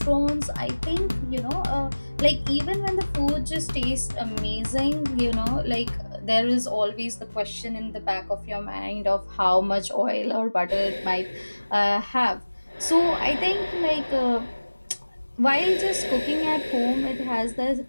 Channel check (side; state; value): both; inverted; correlation -1.00